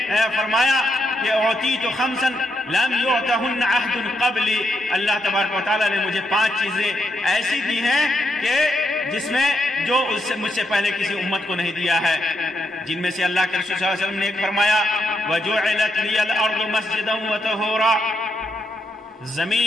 فرمایا کہ اعطیت خمسا لم یعطہن عہد قبلی، اللہ تبارک و تعالیٰ نے مجھے 5 چیزیں ایسی دی ہیں کہ جس میں جو مجھ سے پہلے کسی امت کو نہیں دیا ہے، جن میں سے اللہ کے رسول صلی اللہ علیہ وسلم نے ایک فرمایا وَجُعِلَتْ لِيَ الْأَرْضُ مَسْجِدًا وَطَهُورًا،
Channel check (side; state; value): both; normal; correlation 0.81